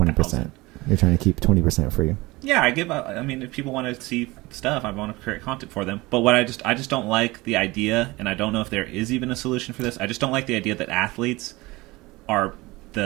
You're trying to keep 20% free. Yeah, I mean, if people want to see stuff, I want to create content for them. But what I just don't like the idea, and I don't know if there is even a solution for this. I just don't like the idea that athletes are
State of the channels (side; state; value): left; quieter; 21.6 dB